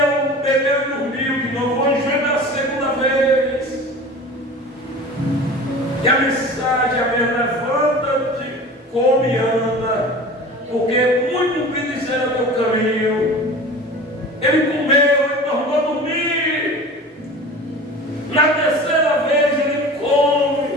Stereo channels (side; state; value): both; normal; correlation 0.37